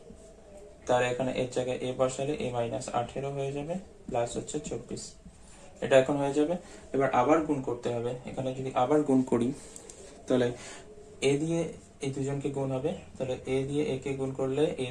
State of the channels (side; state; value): both; identical; correlation 1.00